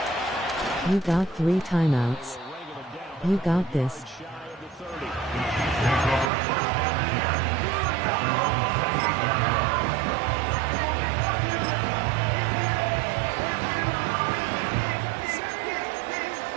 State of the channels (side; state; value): left; drops out; at 6.3 s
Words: You got 3 timeouts. You got this.